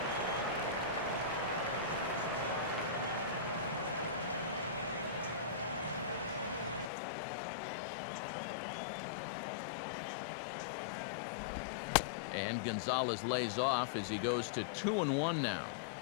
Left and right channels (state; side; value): drops out; right; at 6.9 s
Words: And Gonzalez lays off as he goes to 2-1 now.